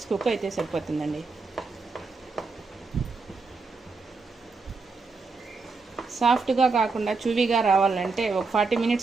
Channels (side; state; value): left; quieter; 4.2 dB